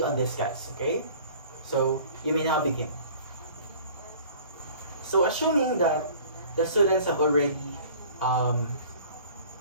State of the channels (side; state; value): both; inverted; correlation -0.48